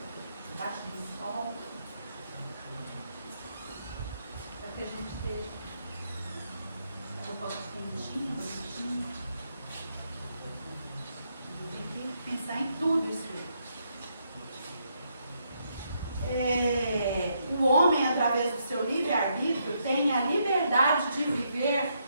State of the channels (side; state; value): both; inverted; correlation -0.77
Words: Debaixo do sol. Para que a gente esteja eu posso quentinho, quentinho. Tem que pensar em tudo isso. O homem, através do seu livre-arbítrio, tem a liberdade de viver